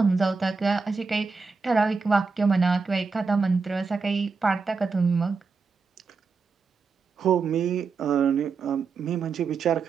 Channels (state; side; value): quieter; left; 4.7 dB